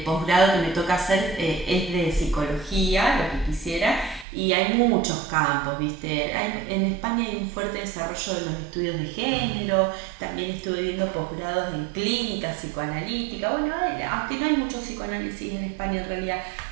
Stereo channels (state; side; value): drops out; left; at 4.2 s